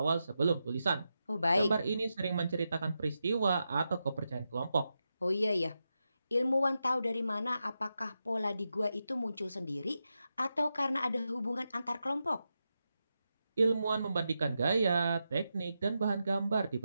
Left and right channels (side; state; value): both; inverted; correlation -0.88